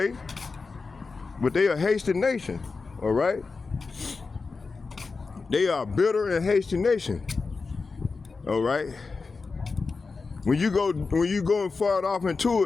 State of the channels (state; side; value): quieter; right; 4.3 dB